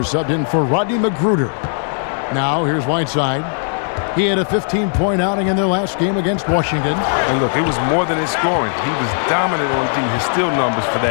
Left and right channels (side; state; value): right; silent; digital silence